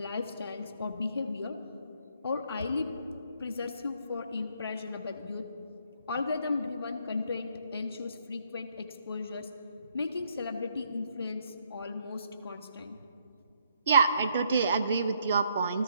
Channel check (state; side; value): inverted; both; correlation -0.71